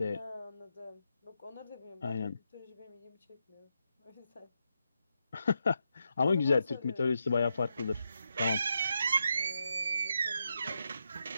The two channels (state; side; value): inverted; both; correlation -0.84